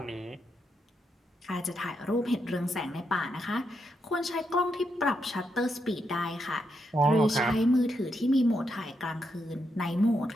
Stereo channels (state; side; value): normal; both; correlation 0.82